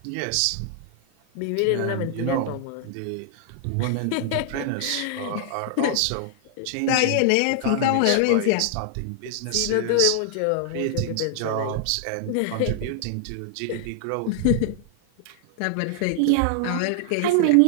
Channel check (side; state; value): both; different; correlation -0.01